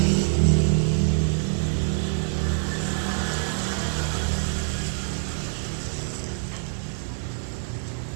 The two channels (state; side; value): silent; left; digital silence